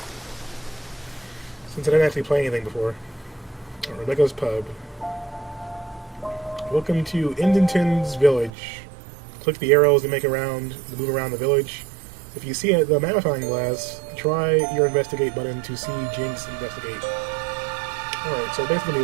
Since I didn't actually play anything before. Alright, Rebecca's Pub. Welcome to Indington's Village. Click the arrows to move around the village. If you see the magnifying glass, try your investigate button to see Jinx investigate. Alright, so basically a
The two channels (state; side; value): drops out; left; at 8.5 s